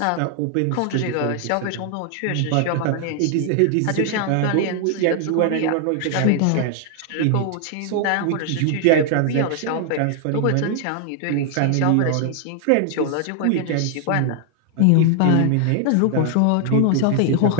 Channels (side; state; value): both; different; correlation 0.00